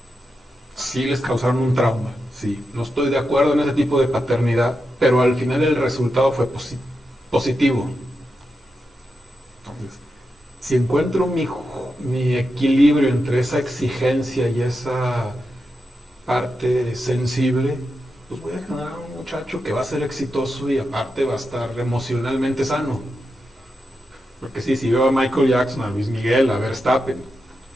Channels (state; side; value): normal; both; correlation 0.88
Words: sí les causaron un trauma, sí, no estoy de acuerdo en ese tipo de paternidad, pero al final el resultado fue positivo. Entonces, si encuentro mi equilibrio entre esa exigencia y esa parte sensible, pues voy a generar un muchacho que va a ser exitoso y aparte va a estar emocionalmente sano. Porque sí, si veo a Michael Jackson, a Luis Miguel, a Verstappen,